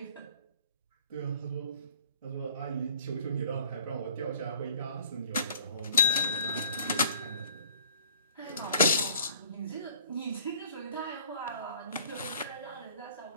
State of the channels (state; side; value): inverted; both; correlation -0.55